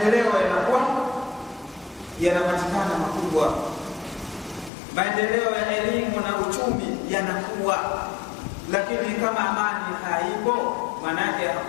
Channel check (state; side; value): drops out; right; at 4.7 s